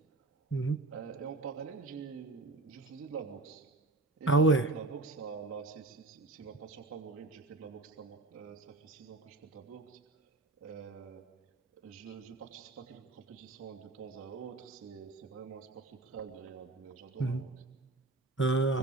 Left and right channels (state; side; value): quieter; left; 3.0 dB